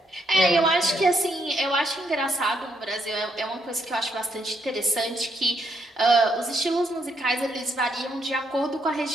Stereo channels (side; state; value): both; normal; correlation 0.76